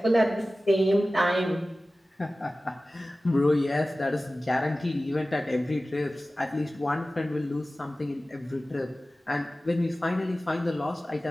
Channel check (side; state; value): both; normal; correlation 0.96